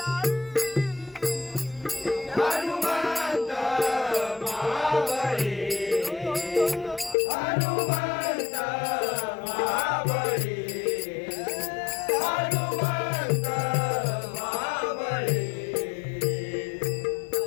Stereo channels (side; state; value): right; drops out; at 7.2 s